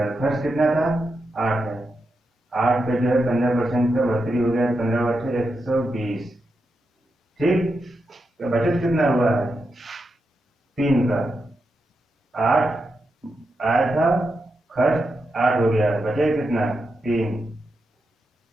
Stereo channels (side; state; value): both; normal; correlation 0.86